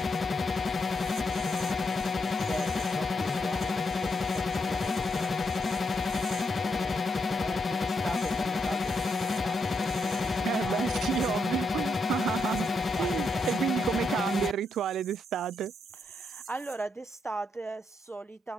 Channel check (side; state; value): both; normal; correlation 0.80